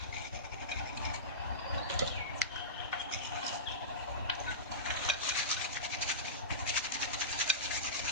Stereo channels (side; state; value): both; normal; correlation -0.19